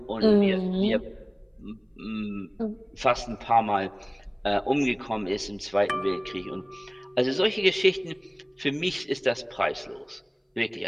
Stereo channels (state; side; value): identical; both; correlation 1.00